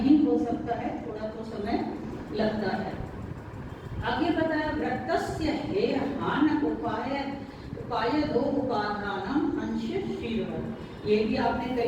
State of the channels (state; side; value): identical; both; correlation 1.00